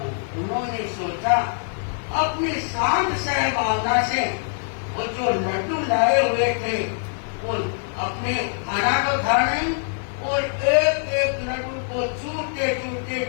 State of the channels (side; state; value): right; silent; 63 dB below the other